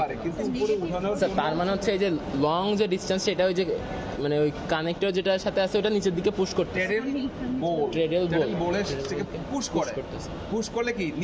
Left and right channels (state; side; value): identical; both; correlation 1.00